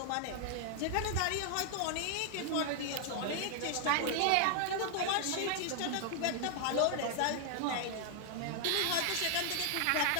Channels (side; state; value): both; different; correlation 0.00